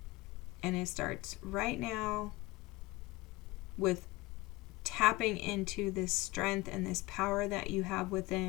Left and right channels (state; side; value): quieter; right; 20.7 dB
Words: And it starts right now with tapping into this strength and this power that you have